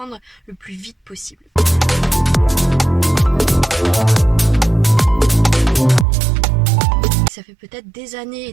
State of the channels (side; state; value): left; drops out; at 6.1 s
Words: le plus vite possible. Ça fait peut-être des années et